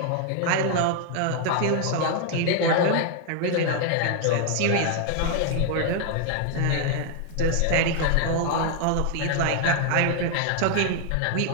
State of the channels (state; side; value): different; both; correlation 0.00